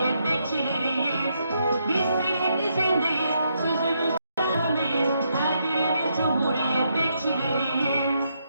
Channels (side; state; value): both; inverted; correlation -0.78